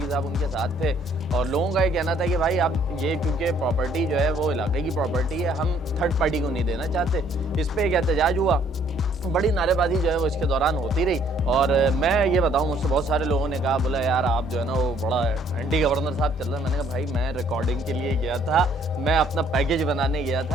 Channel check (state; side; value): normal; both; correlation 0.63